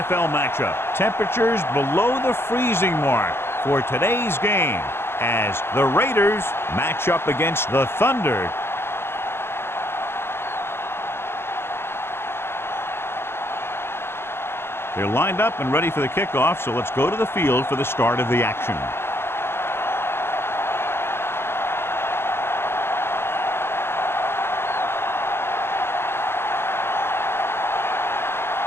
matchup. Temperatures below the freezing mark for today's game as the Raiders match up against the Thunder. They're lined up and ready for the kickoff, so let's go to the field for the start of the action.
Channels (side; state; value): right; late; 0.11 ms